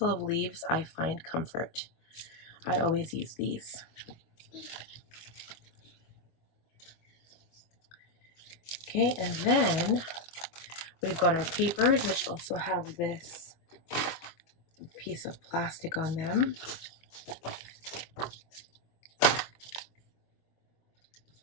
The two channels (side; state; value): right; late; 23 ms